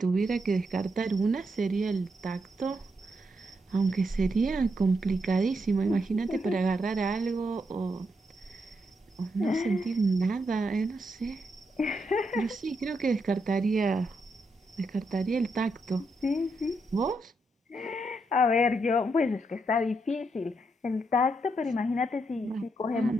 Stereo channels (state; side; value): normal; both; correlation 0.80